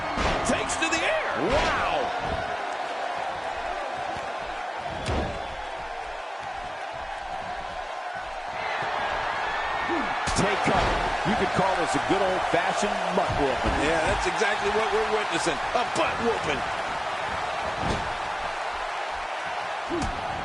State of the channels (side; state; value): both; identical; correlation 1.00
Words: Takes to the air. Wow! Take cover. You could call this a good old-fashioned butt whooping. Yeah, that's exactly what we're witnessing. A butt whooping.